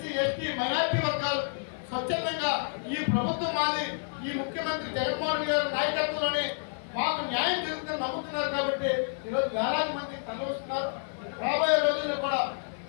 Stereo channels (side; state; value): right; silent; 58 dB below the other